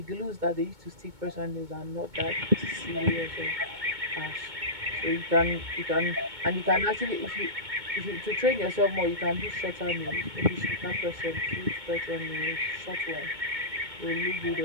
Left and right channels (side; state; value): left; late; 2.2 ms